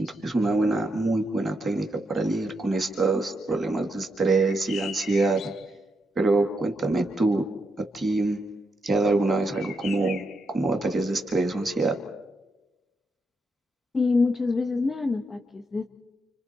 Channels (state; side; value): normal; both; correlation 0.82